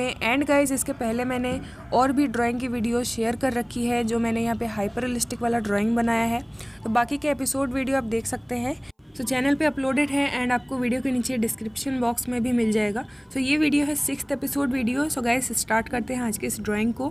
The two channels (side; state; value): both; identical; correlation 1.00